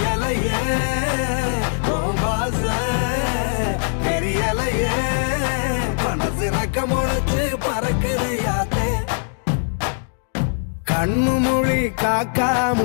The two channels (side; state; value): right; silent; digital silence